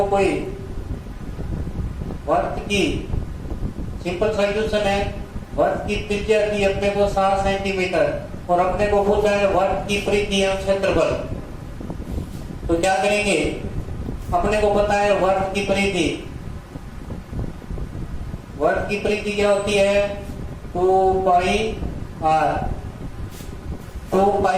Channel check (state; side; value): identical; both; correlation 1.00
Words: कोई वर्त की सिंपल सा क्वेश्चन है। वर्त की त्रिज्या की अपने को 7 सेंटीमीटर और अपने को पूछा है वर्त की परिधि एवं क्षेत्रफल। तो क्या करेंगे, अपने को पता है वर्त की परिधि, वर्त की परिधि क्या होती है 2 पाई आर। 2